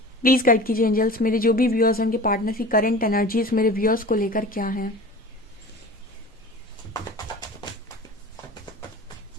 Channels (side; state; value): both; normal; correlation 0.38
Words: प्लीज गाइड कीजिए एंजल्स, मेरे जो भी व्यूअर्स हैं उनके पार्टनर की करंट एनर्जीज मेरे व्यूअर्स को लेकर क्या है।